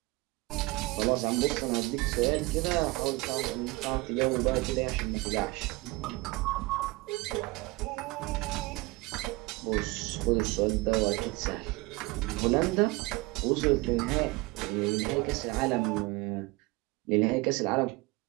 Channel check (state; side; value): quieter; left; 23.1 dB